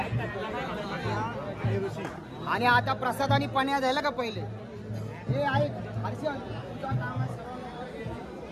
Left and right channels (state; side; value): identical; both; correlation 1.00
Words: आणि आता प्रसाद आणि पण्या झालं का पहिले हे ऐक हर्षल तुझं काम आहे